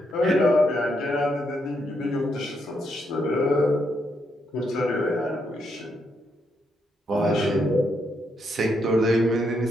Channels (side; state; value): both; normal; correlation 0.78